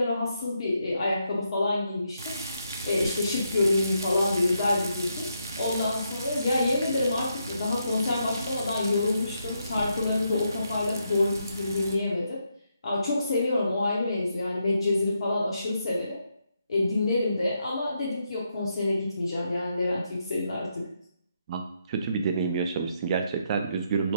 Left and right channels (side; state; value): both; inverted; correlation -0.80